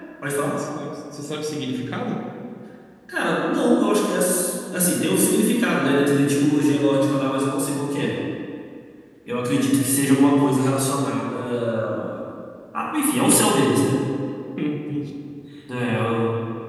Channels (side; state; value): both; identical; correlation 1.00